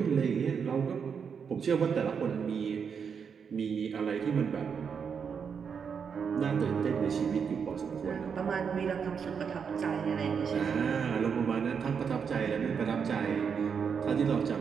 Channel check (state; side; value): quieter; left; 6.6 dB